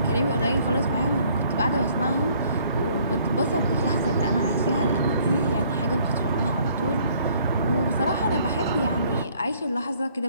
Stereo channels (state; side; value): inverted; both; correlation -0.61